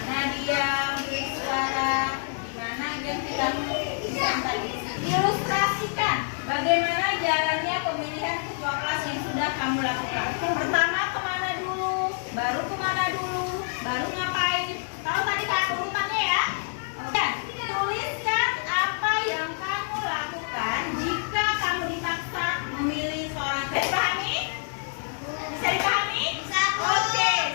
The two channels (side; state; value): right; silent; digital silence